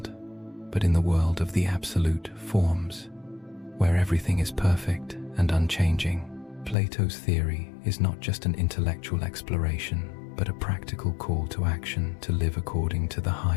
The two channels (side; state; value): right; drops out; at 6.8 s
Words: but in the world of the absolute forms, where everything is perfect and unchanging. Plato's theory is not just an intellectual exploration, but a practical call to action to live according to the